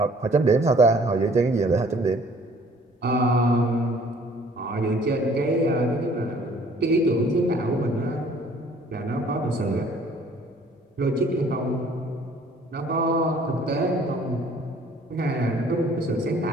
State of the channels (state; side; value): normal; both; correlation 0.56